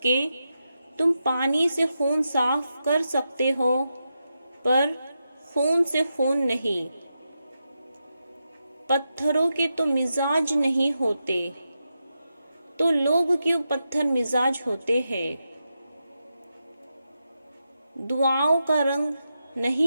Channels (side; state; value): both; inverted; correlation -0.87